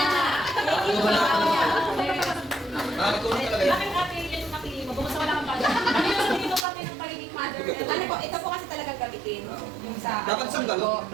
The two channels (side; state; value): left; drops out; at 6.7 s